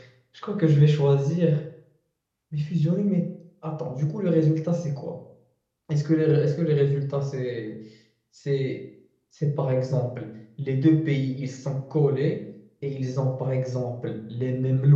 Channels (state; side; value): identical; both; correlation 1.00